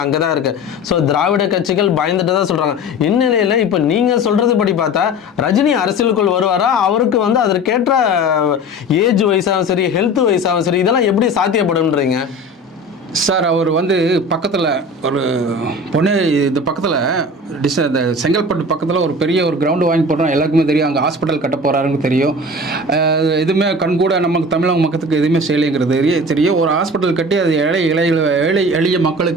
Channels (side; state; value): both; normal; correlation 0.36